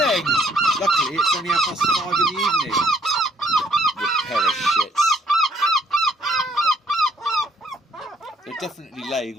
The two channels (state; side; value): normal; both; correlation 0.66